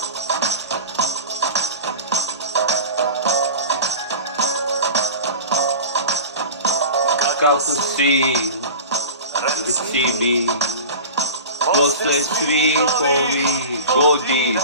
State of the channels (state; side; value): inverted; both; correlation -0.33